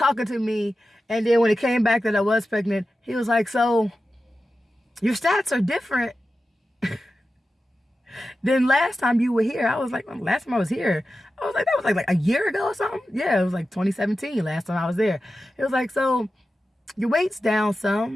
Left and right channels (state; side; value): normal; both; correlation 0.93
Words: to me, and then when it came back that I was pregnant, he was like, so your stats are different than last time you were here. I was like, well, last time I was here, I was like, that was like a year ago or something. Yeah, it was like 2017 last time I was there. It was like, so your weight's down